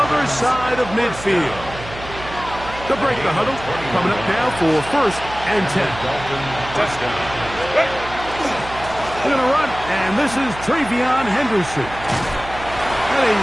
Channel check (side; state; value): right; noise; hum, 13 dB below the sound